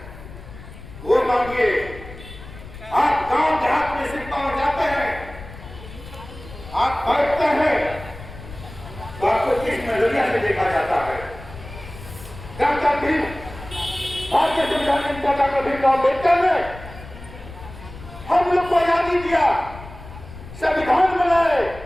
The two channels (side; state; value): left; noise; rumble, 15 dB below the sound